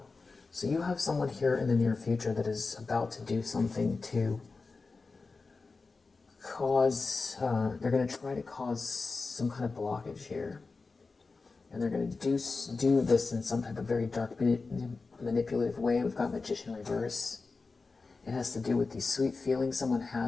So you have someone here in the near future that is about to do something to cause, they're going to try to cause some kind of blockage here. And they're going to do this in some type of very dark, manipulative way. We've got Magician reverse. It has to do with these sweet feelings someone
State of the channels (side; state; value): right; quieter; 4.1 dB